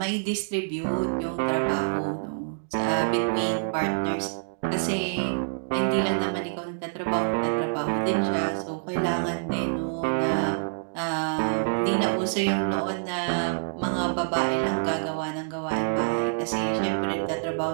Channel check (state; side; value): silent; left; digital silence